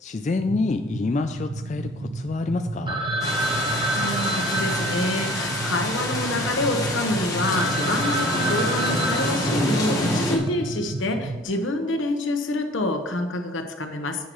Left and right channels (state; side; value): normal; both; correlation 0.48